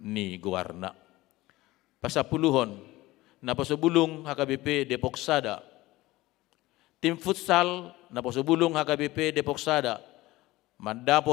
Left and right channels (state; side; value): quieter; right; 18.6 dB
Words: guwarna. Pasapuluhon napasobulong HKBP Depok Sada. Tim futsal napasobulong HKBP Depok Sada